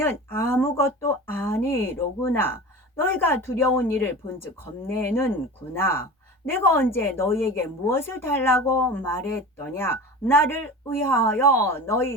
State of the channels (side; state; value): both; normal; correlation 0.33